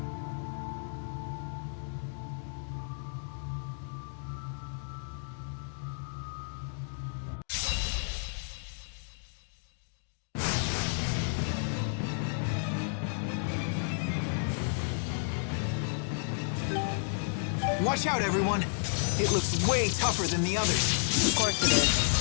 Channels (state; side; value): silent; right; digital silence